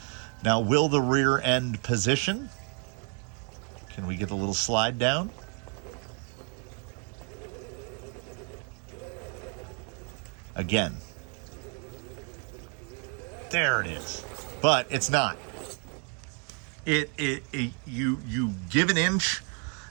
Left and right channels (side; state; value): left; quieter; 37.9 dB